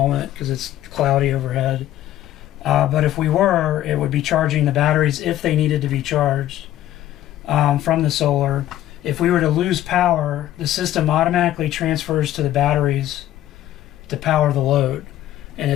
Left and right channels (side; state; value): right; quieter; 13.2 dB